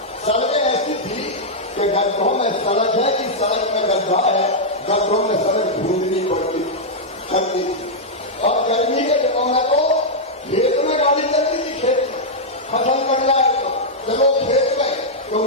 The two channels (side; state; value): both; normal; correlation -0.06